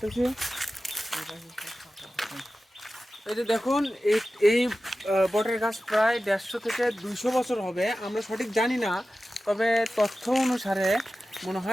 এই যে দেখুন এই বটের গাছ প্রায় 150 থেকে 200 বছর হবে, আমরা সঠিক জানি না, তবে তথ্য অনুসারে মনে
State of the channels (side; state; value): both; normal; correlation 0.94